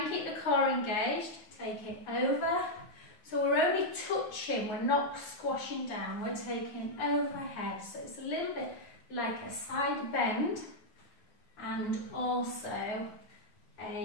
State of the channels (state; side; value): late; right; 9.3 ms